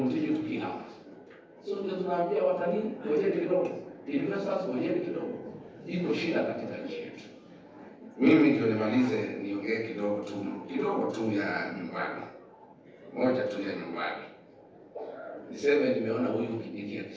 to kill others. So tunaambia watalii ngojeni kidogo, investors ngojeni kidogo. Iko shida katika nchi yetu. Mimi ndio nimalize niongee kidogo tu ya nyumbani. Moja tu ya nyumbani. Niseme nimeona huyu Kindiki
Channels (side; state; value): both; identical; correlation 1.00